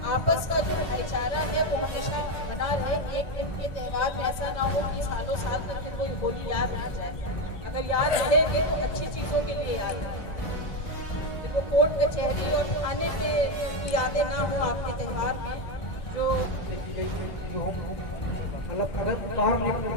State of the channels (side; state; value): right; late; 1.9 ms